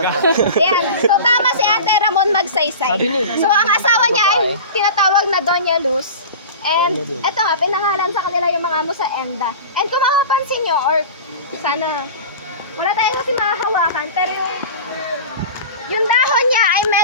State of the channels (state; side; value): inverted; both; correlation -0.33